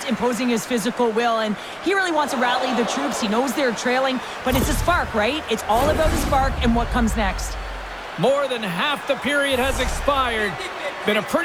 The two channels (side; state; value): both; identical; correlation 1.00